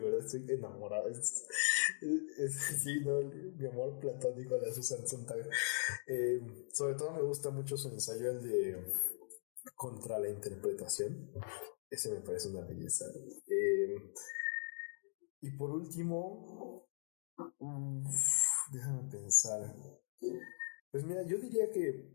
estoy enamorado. Sí, ¿no? Mi amor platónico a la Susan Sontag. Sobre todo me gusta mucho su ensayo, el de Contra la interpretación. Ese me parece una belleza. Y por último, déjame pensar. Pues mira, yo diría que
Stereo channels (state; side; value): silent; right; digital silence